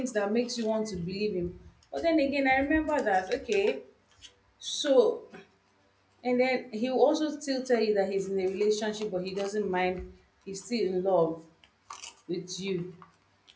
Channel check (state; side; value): identical; both; correlation 1.00